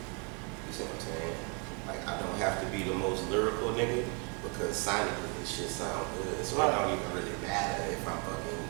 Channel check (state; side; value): quieter; left; 34.9 dB